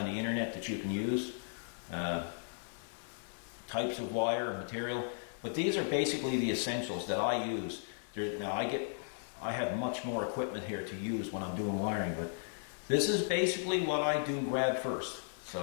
the internet that you can use. Types of wire, material, but these are basically the essentials that I use. Now I have much more equipment here to use when I'm doing wiring, but this is basically what I do grab first.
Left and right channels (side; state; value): right; silent; digital silence